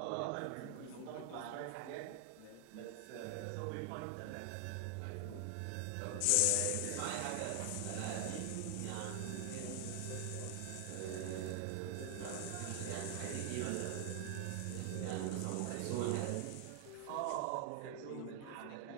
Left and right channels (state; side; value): different; both; correlation 0.00